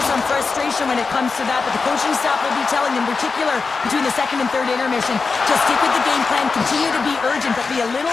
some frustration when it comes to that, but the coaching staff will be telling them, in particular between the second and third intermission, to stick with the game plan, continue to be urgent, but be a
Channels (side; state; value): right; quieter; 4.6 dB